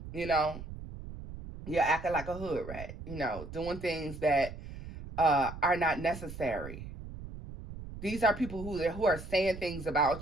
You're acting like a hood rat. Doing things that are not necessary. These are people who are saying things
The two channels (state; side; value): noise; right; rumble, 12 dB below the sound